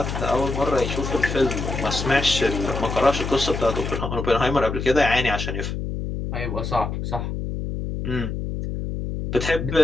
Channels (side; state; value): left; noise; hum, 4 dB below the sound